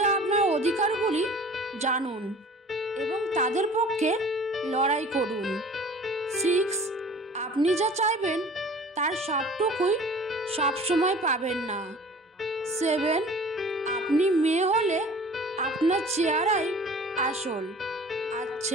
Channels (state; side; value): normal; both; correlation 0.45